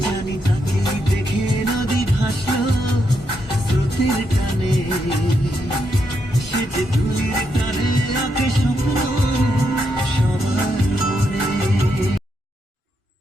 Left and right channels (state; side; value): normal; both; correlation 0.80